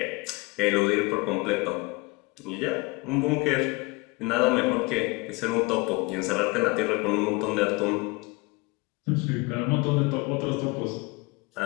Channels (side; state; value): right; quieter; 25.3 dB